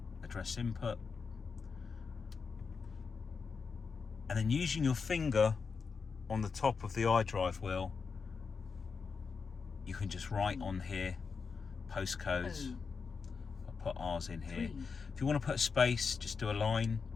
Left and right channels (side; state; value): right; quieter; 5.3 dB